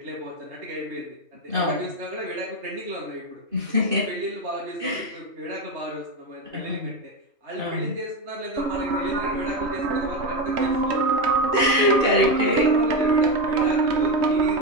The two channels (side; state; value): left; late; 2.6 ms